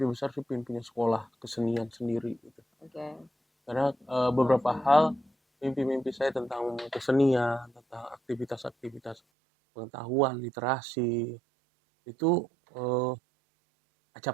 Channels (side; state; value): left; drops out; at 9.2 s